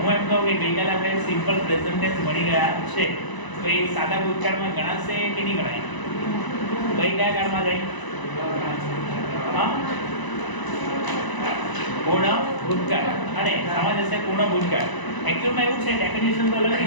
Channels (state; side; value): late; right; 1.0 ms